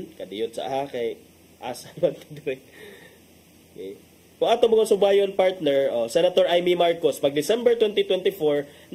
kadiyot sa kay asa man dire. Okay. Kung ato mga subayon, partner, Senator Amy Marcos, pag December 2024,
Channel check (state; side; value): identical; both; correlation 1.00